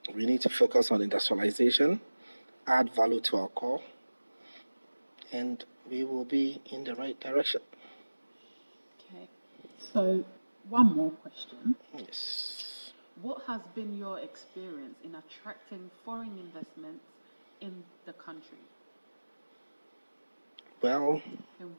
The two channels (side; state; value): both; inverted; correlation -1.00